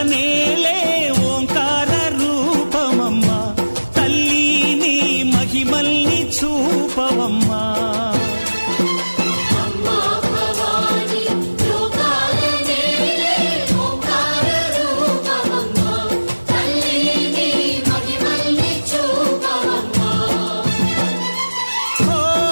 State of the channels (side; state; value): both; inverted; correlation -1.00